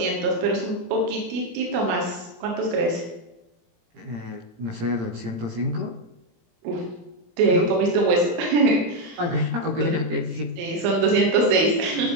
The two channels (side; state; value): left; late; 18 ms